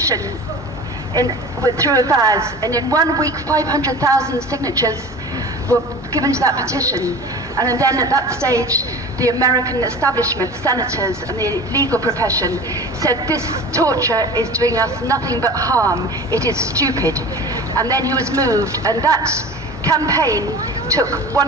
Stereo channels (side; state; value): both; normal; correlation 0.37